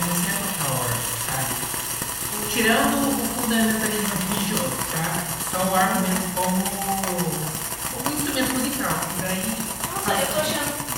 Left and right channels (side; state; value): both; identical; correlation 1.00